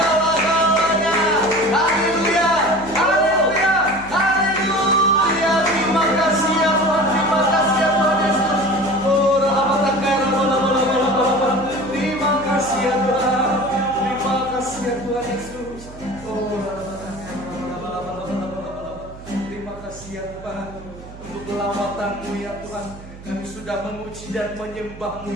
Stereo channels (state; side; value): noise; right; hum, 17 dB below the sound